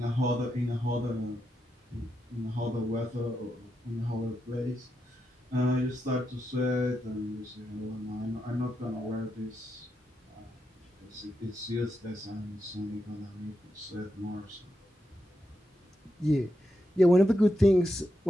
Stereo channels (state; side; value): normal; both; correlation 0.85